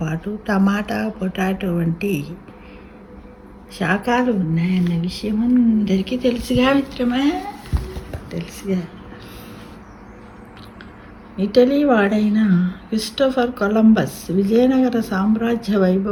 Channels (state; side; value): identical; both; correlation 1.00